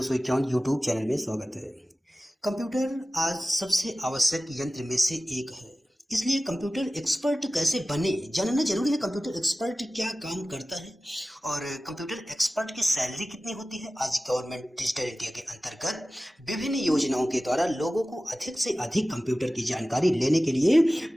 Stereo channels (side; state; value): both; normal; correlation 0.96